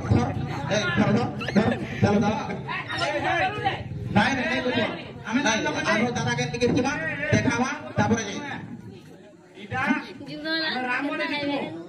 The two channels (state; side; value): identical; both; correlation 1.00